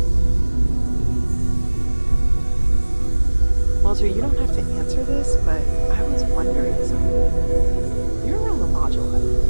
Walter, you don't have to answer this, but I was wondering something. You're around the lodge a lot,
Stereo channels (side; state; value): both; inverted; correlation -1.00